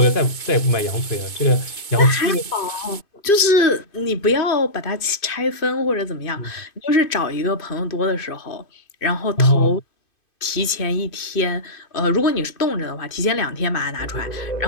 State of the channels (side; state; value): right; late; 2.5 ms